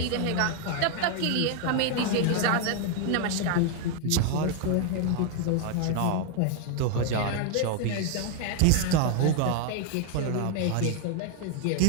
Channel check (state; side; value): different; both; correlation 0.01